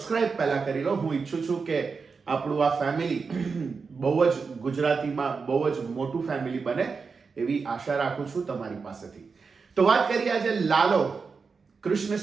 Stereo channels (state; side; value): quieter; left; 5.0 dB